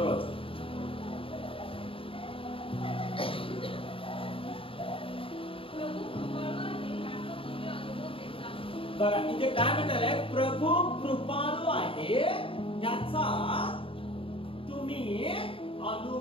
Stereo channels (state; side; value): late; right; 0.26 ms